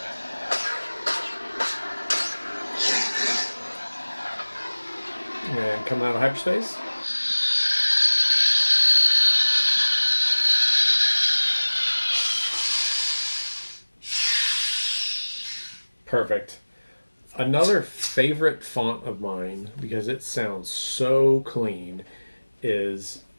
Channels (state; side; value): inverted; both; correlation -1.00